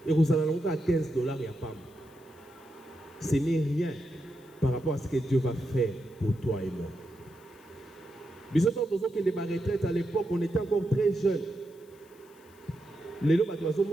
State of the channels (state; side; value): noise; left; hiss, 29 dB below the sound